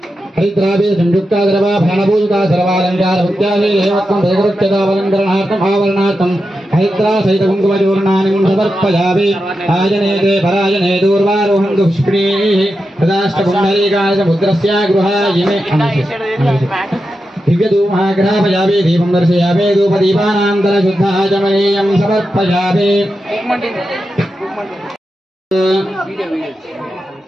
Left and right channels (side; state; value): both; normal; correlation 0.89